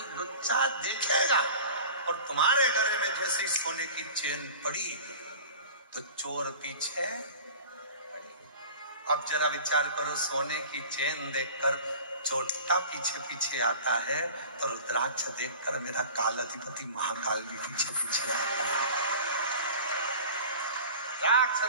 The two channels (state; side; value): inverted; both; correlation -0.39